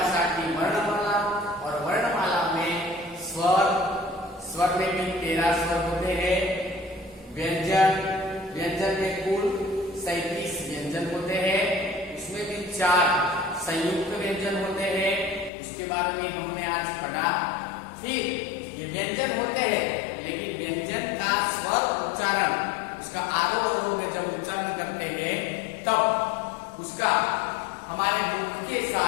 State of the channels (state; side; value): drops out; right; at 15.5 s